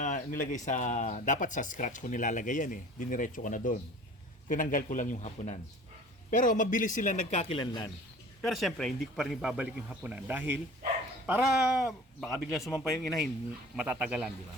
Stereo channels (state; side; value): normal; both; correlation 0.44